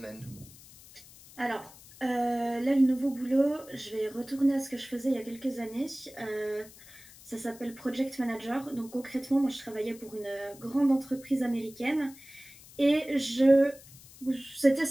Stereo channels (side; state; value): left; noise; hiss, 21 dB below the sound